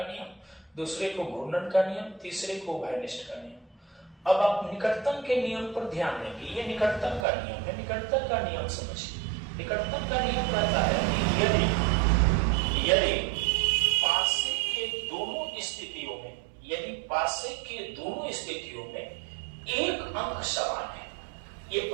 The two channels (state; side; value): drops out; left; at 7.2 s